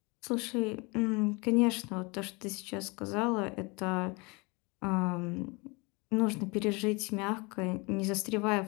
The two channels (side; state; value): right; quieter; 27.7 dB